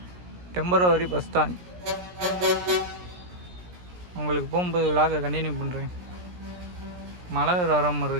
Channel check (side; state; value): left; late; 17 ms